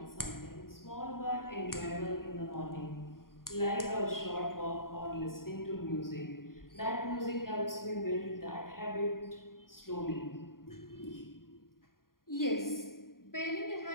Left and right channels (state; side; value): late; right; 0.91 ms